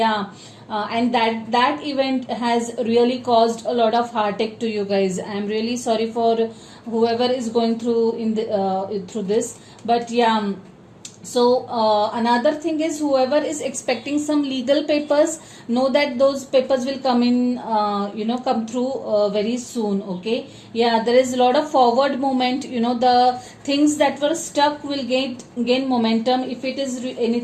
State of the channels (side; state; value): both; identical; correlation 1.00